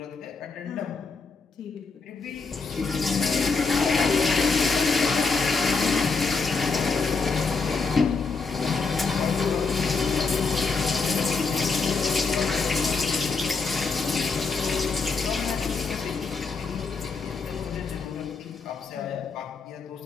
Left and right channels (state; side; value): quieter; right; 4.5 dB